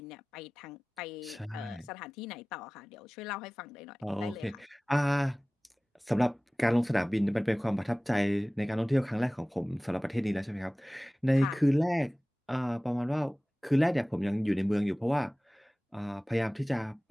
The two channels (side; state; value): both; normal; correlation 0.98